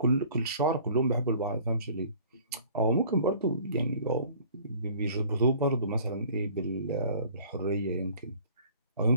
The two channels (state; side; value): inverted; both; correlation -0.51